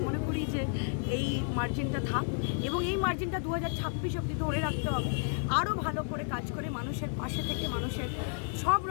মনে করি যে এই মার্জিনটা থাক এবং এই মার্জিনটা 2026 অবধি ধরে রাখতে হবে। আরও ভালো করে কাজ করে মানুষের পাশে থেকে মানুষের সব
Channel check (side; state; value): right; silent; 57 dB below the other